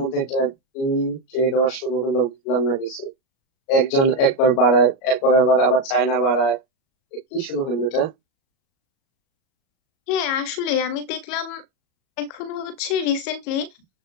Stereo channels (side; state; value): right; late; 37 ms